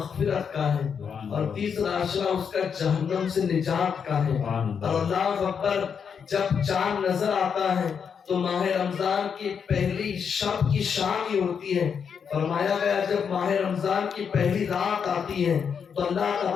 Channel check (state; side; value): quieter; right; 6.8 dB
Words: کا ہے، اور تیسرا اشارہ اس کا جہنم سے نجات کا ہے۔ اور اللہ اکبر، جب چاند نظر آتا ہے تو ماہ رمضان کی پہلی شب کی شام ہی ہوتی ہے۔ فرمایا گیا جب ماہ رمضان کی پہلی رات آتی ہے تو اللہ